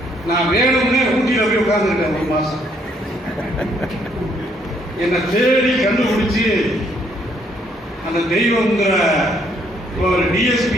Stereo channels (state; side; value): normal; both; correlation 0.69